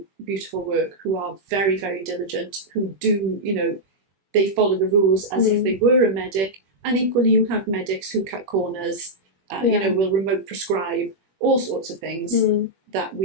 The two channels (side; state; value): left; late; 21 ms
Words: beautiful work, who are very, very diligent, who do, you know, they follow the rules as if they were a medic. And equally, you have medics who cut corners, you know, will remote prescribe, all sorts of things that